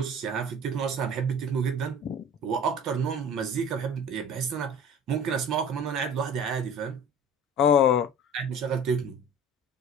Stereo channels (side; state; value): both; normal; correlation 0.41